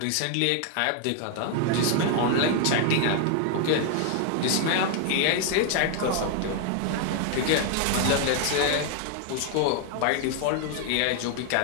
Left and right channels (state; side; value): different; both; correlation 0.00